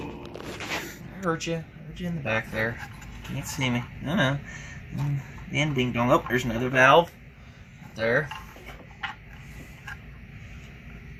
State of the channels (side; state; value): both; identical; correlation 1.00